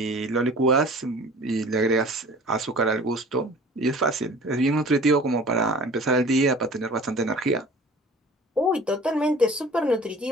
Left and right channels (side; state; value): both; normal; correlation 0.45